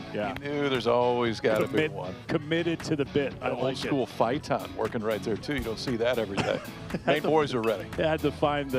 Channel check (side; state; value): both; identical; correlation 1.00